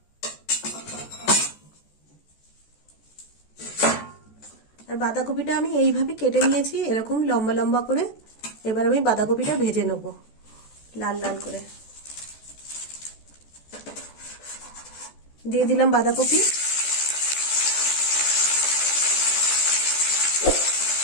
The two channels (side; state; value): right; late; 14 ms